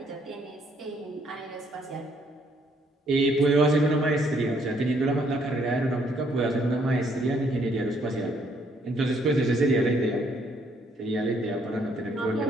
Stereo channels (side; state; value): both; normal; correlation 0.68